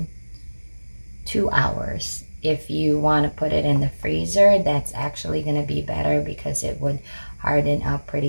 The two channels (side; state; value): both; inverted; correlation -1.00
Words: 2 hours. If you want to put it in the freezer, that's actually going to be better because it would harden up